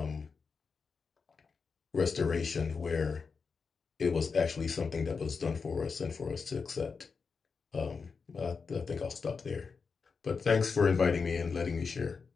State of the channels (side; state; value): right; quieter; 5.2 dB